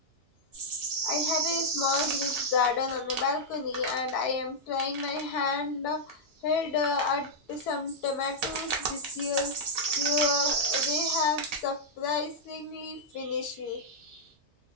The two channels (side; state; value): both; normal; correlation -0.07